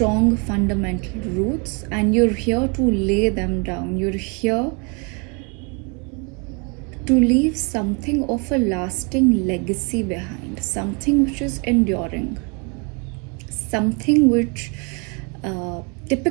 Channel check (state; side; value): quieter; left; 33.6 dB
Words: fundamental roots, and you're here to lay them down. You're here to leave something of a lasting legacy behind, something which is enduring, something which